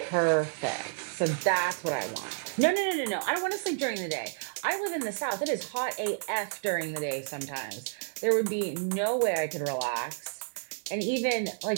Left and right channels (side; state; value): left; silent; 58 dB below the other